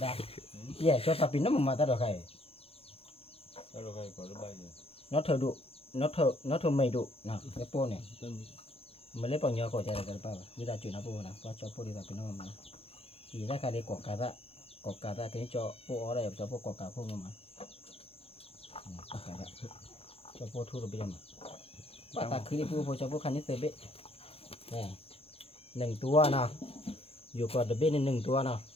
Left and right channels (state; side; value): late; right; 0.28 ms